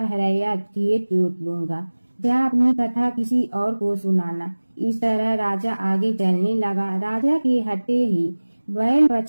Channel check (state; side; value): inverted; both; correlation -1.00